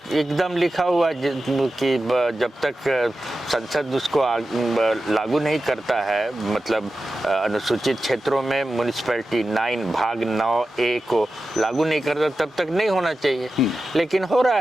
एकदम लिखा हुआ है कि जब तक संसद उसको लागू नहीं करता है, मतलब अनुसूचित क्षेत्रों में म्युनिसिपैलिटी 9 भाग 9A को लागू नहीं करता, तब तक नहीं होना चाहिए। लेकिन हो रहा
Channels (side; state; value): both; normal; correlation 0.93